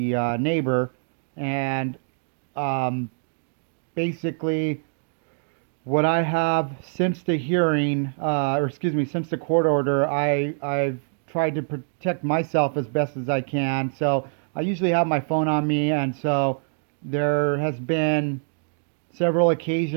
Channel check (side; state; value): left; silent; digital silence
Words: neighbor. And um, basically, what I have since the hearing, or excuse me, since the court order, I've tried to protect myself as best as I can. So I usually have my phone on me, and so there has been several